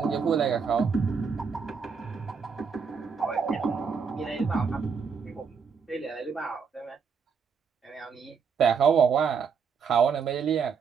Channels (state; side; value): quieter; left; 6.0 dB